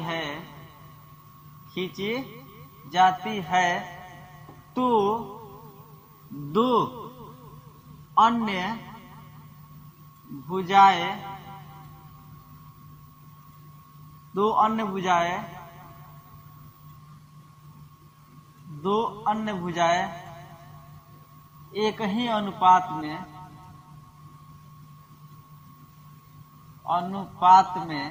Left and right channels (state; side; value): identical; both; correlation 1.00